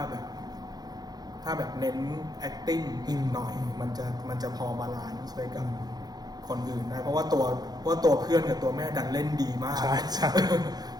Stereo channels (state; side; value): late; left; 0.19 ms